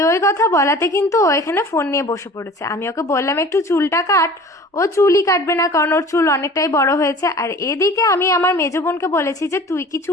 ওই কথা বলাতে কিন্তু ও এখানে ফোন নিয়ে বসে পড়েছে। আমি ওকে বললাম একটু চুলটা কাট, ও চুলই কাটবে না, কারণ ওর চুল অনেকটাই বড় হয়েছে। আর এদিকে আমি আমার মেজো বোনকে বলেছি যে তুই কি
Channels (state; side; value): normal; both; correlation 0.43